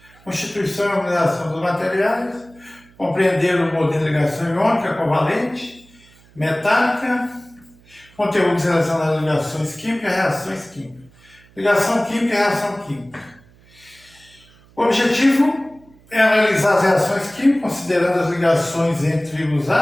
Constituição e organização dos materiais, compreender o modelo de ligação iônica, covalente, metálica, conteúdos relacionados a ligações químicas e reações químicas. Ligação química e reação química. O objetivo é analisar as reações químicas, considerando as ligações entre os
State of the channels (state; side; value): noise; right; hum, 28 dB below the sound